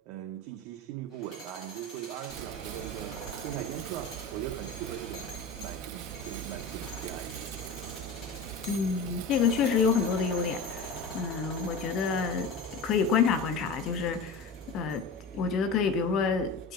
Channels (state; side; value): quieter; right; 3.5 dB